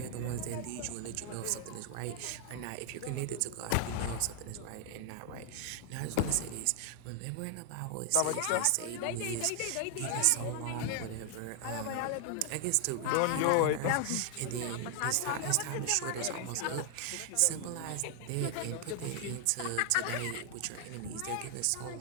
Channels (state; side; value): different; both; correlation 0.00